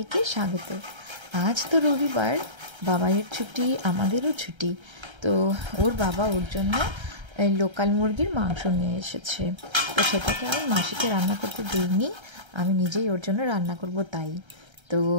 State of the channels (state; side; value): late; left; 1.3 ms